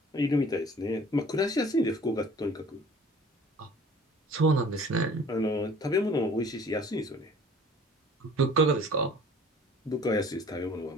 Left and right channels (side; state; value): both; normal; correlation 0.50